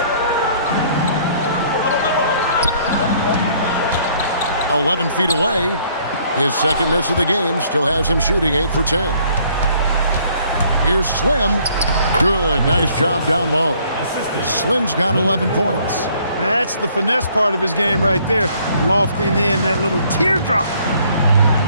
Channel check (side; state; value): both; inverted; correlation -0.62